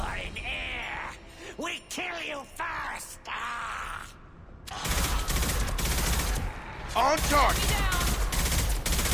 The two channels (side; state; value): both; identical; correlation 1.00